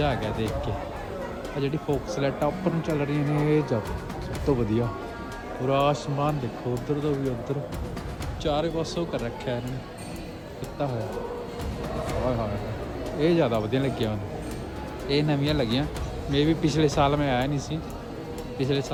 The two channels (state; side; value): identical; both; correlation 1.00